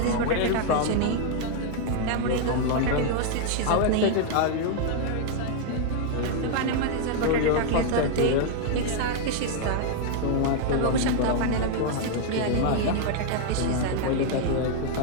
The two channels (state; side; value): different; both; correlation 0.00